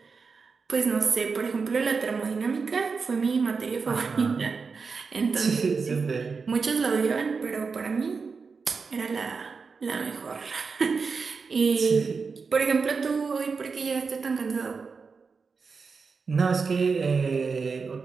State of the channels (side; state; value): left; quieter; 5.0 dB